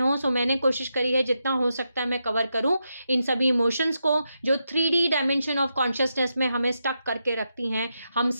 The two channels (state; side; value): inverted; both; correlation -0.85